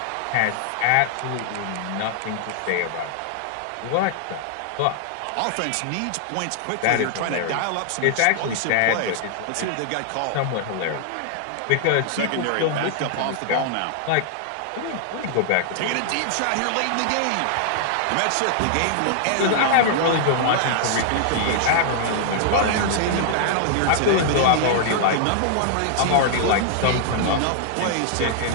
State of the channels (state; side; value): different; both; correlation -0.01